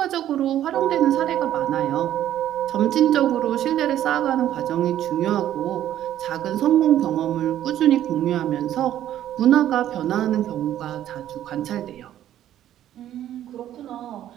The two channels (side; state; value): left; quieter; 11.8 dB